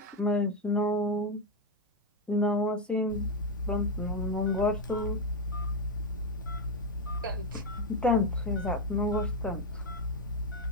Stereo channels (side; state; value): both; normal; correlation 0.06